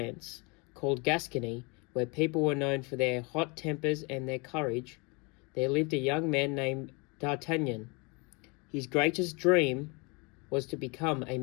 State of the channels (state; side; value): quieter; right; 29.8 dB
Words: called Gascony, where people were known for their hot tempers and their courage, there lived a young man named D'Artagnan. His greatest dream was to become a